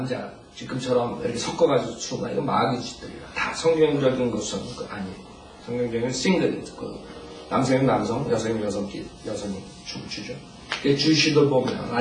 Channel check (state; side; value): identical; both; correlation 1.00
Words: 지금처럼 이렇게 섞어가지고 추는 거, 이거 마귀 짓들이라. 다 성경적인 것은 아니에요. 성경적인 싱글, 남성은 남성, 여성은 여성이 춤을 추죠. 주시들 보면